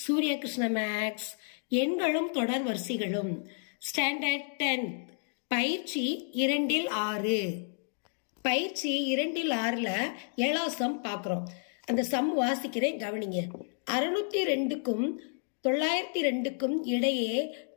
Krishna maths. எண்களும் தொடர் வரிசைகளும் ஸ்டாண்டர்ட் 10 பயிற்சி 2-6. பயிற்சி 2-6ல் 7ஆம் சம் பார்க்குறோம். அந்த சம் வாசிக்கிறேன், கவனிங்க. 602க்கும் 902க்கும் இடையே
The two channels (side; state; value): right; silent; 57 dB below the other